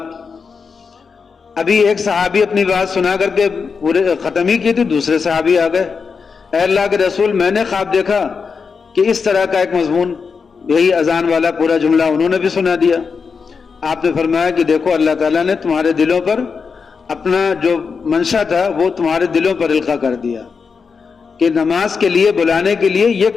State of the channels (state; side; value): quieter; right; 5.4 dB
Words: ابھی ایک صحابی اپنی بات سنا کر کے پورے ختم ہی کی تھی، دوسرے صحابی آ گئے، اے اللہ کے رسول میں نے خواب دیکھا کہ اس طرح کا ایک مضمون، یہی اذان والا پورا جملہ انہوں نے بھی سنا دیا۔ آپ نے فرمایا کہ دیکھو اللہ تعالیٰ نے تمہارے دلوں پر اپنا جو منشا تھا وہ تمہارے دلوں پر القاء کر دیا کہ نماز کے لیے بلانے کے لیے یہ